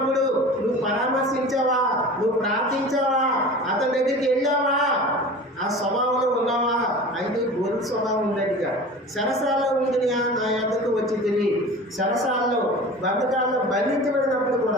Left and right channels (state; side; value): normal; both; correlation 0.37